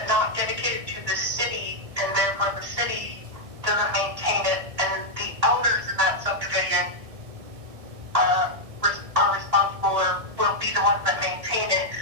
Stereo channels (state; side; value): late; left; 1.6 ms